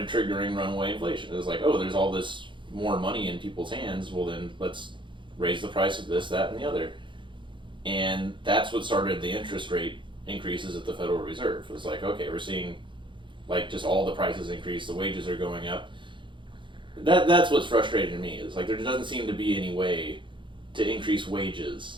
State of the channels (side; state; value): left; late; 0.23 ms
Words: triggering runaway inflation. It was like, oh, there's all this more money in people's hands, well then let's raise the price of this, that, and the other. And that's what started the interest rate increases at the Federal Reserve. It was like, okay, we're seeing like just all the prices increase, the wages are going up. That's what's frustrating me, is like there doesn't seem to be any way to increase wages